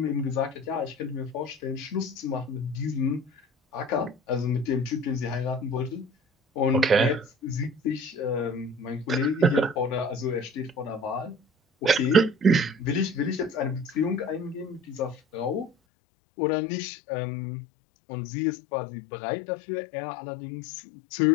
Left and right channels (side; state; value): right; drops out; at 15.7 s